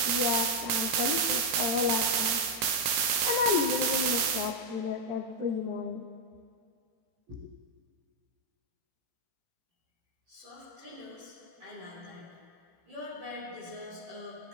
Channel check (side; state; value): left; late; 18 ms